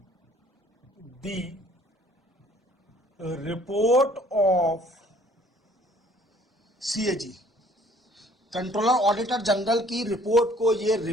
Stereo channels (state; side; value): normal; both; correlation 0.58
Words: the report of CAG, controller auditor general की रिपोर्ट को ये